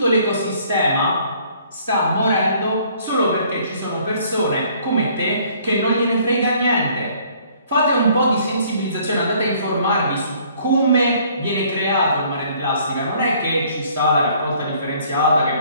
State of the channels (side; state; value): both; inverted; correlation -0.59